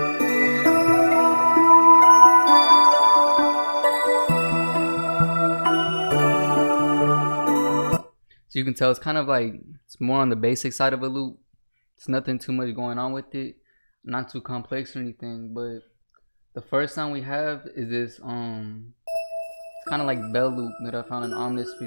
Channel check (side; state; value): both; inverted; correlation -1.00